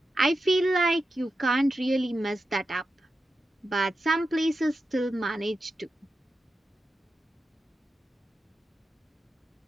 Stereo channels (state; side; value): normal; both; correlation 0.90